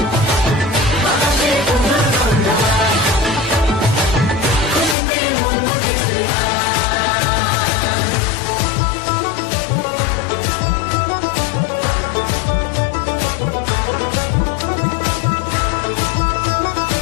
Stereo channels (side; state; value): right; drops out; at 5.0 s